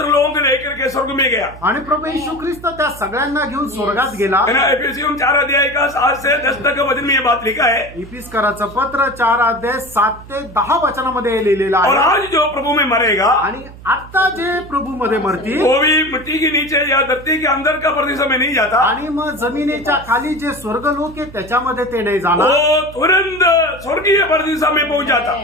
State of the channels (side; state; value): right; noise; hum, 17 dB below the sound